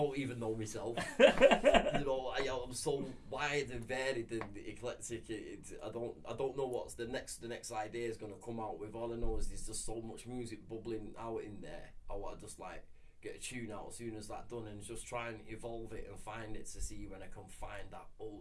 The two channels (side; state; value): both; identical; correlation 1.00